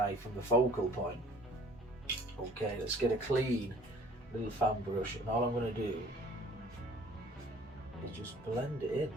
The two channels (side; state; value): both; normal; correlation 0.53